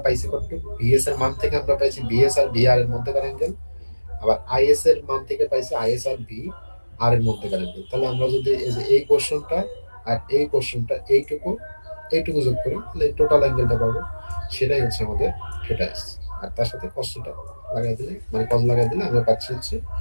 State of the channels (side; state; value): both; inverted; correlation -1.00